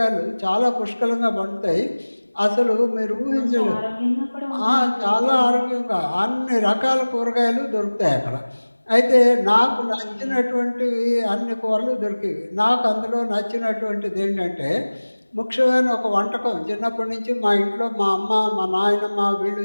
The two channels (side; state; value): both; inverted; correlation -1.00